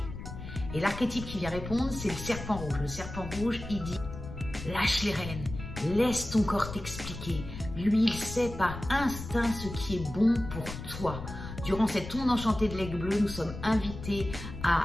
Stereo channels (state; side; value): noise; left; rumble, 10 dB below the sound